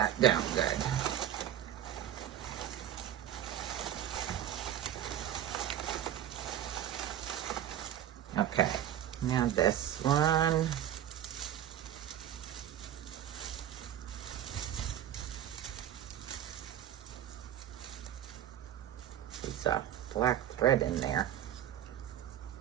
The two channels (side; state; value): left; quieter; 11.1 dB